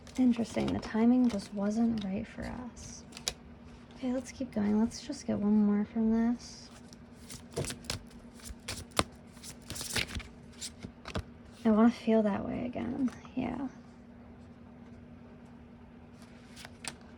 Interesting. The timing just wasn't right for us. Okay, let's keep going. Let's just get one more from this. I want to feel that way again. Yeah.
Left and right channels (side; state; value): both; identical; correlation 1.00